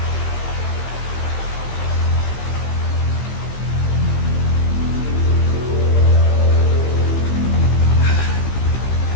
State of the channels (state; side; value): late; right; 15 ms